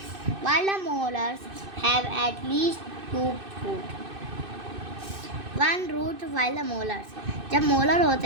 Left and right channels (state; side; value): late; left; 2.6 ms